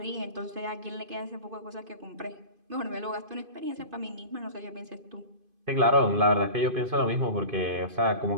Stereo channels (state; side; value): late; left; 2.5 ms